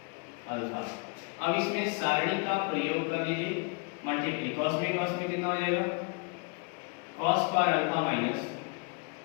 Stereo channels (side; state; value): right; quieter; 34.7 dB